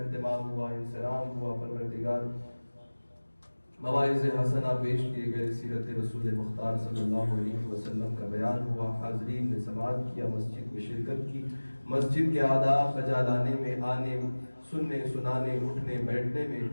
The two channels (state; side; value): inverted; both; correlation -1.00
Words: ہوا انسلام ہوا پروردگار مواعظ حسنہ پیش کیے گئے سیرت رسول مختار صلی اللہ علیہ وسلم کا بیان ہوا حاضرین نے سماعت کیا مسجد میں شرکت کی مسجد کے آداب بجا لانے میں آنے سننے سنانے اٹھنے بیٹھنے میں